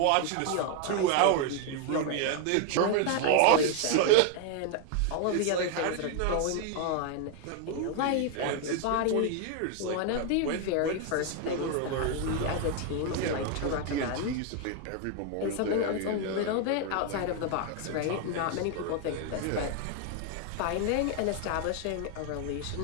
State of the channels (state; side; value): different; both; correlation 0.01